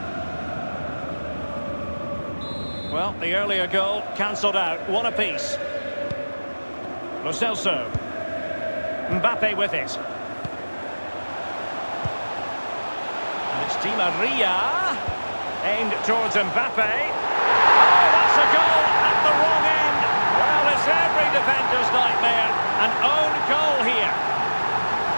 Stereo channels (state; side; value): inverted; both; correlation -1.00